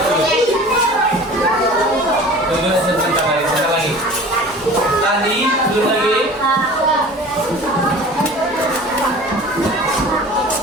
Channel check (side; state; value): both; normal; correlation 0.42